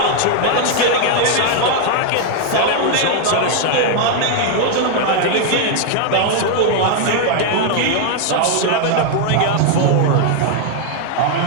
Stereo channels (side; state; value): both; different; correlation 0.00